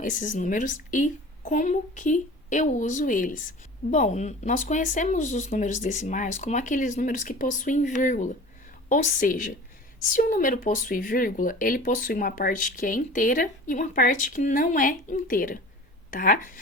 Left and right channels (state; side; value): normal; both; correlation 0.40